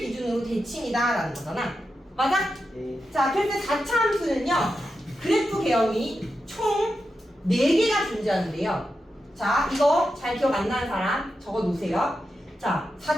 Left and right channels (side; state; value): both; normal; correlation 0.89